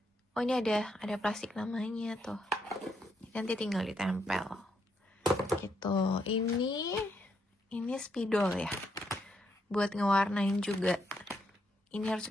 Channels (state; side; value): normal; both; correlation 0.77